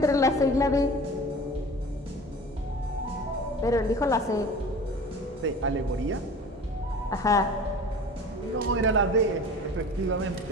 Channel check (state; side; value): normal; both; correlation 0.39